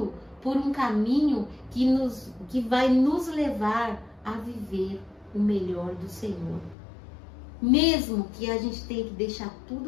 por um caminho que vai nos levar a viver o melhor do Senhor. Mesmo que a gente tenha que deixar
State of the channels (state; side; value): drops out; right; at 6.8 s